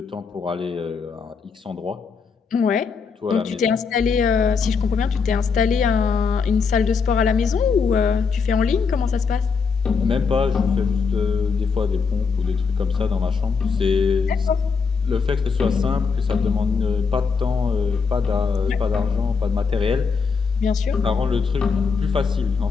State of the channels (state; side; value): quieter; right; 5.3 dB